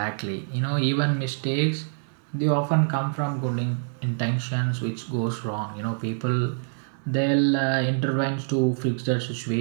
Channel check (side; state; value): left; silent; 61 dB below the other